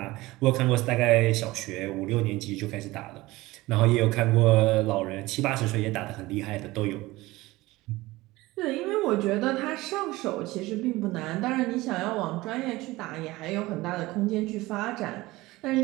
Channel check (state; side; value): quieter; left; 19.5 dB